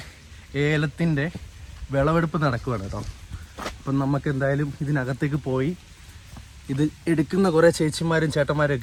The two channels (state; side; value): identical; both; correlation 1.00